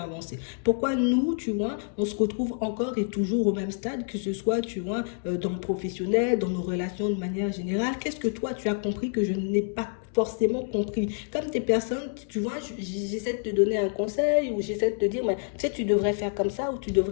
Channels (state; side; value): silent; right; 60 dB below the other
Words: avancer. Pourquoi nous, tu vois, on se retrouve encore et toujours au même stade, que ce soit, tu vois, dans le professionnel, dans nos relations de manière générale. Qu'est-ce que toi, tu as compris que je n'ai pas forcément compris? Comme des personnes, tu vois, j'essaie de te donner un conseil ou j'essaie de te dire, mais, tu sais, tu devrais faire comme ça ou tu